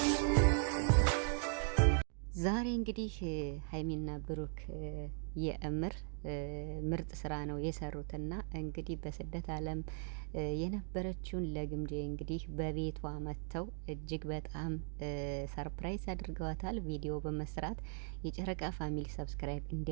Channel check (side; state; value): left; silent; 52 dB below the other